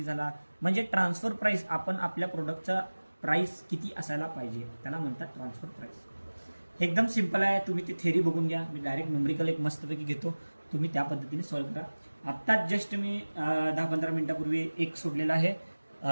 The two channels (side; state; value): both; inverted; correlation -1.00